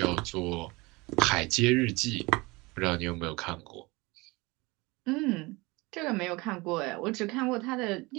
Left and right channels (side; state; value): left; quieter; 23.9 dB